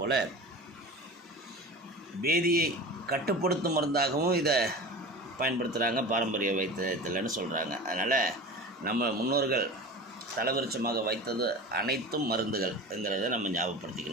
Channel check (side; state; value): both; normal; correlation 0.34